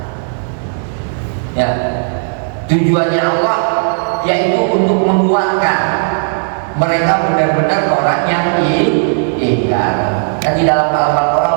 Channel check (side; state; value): left; silent; digital silence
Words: Ya, tujuannya Allah yaitu untuk menguatkan mereka benar-benar orang yang ingkar. Kan di dalam